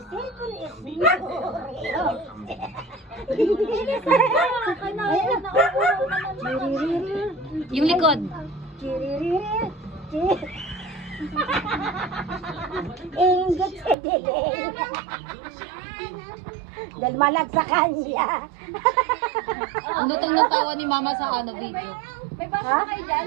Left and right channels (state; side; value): drops out; left; at 14.0 s